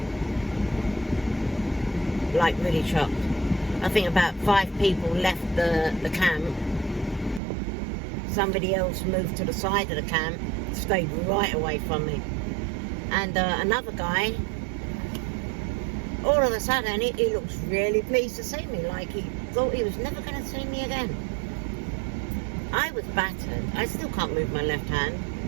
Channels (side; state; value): left; drops out; at 7.4 s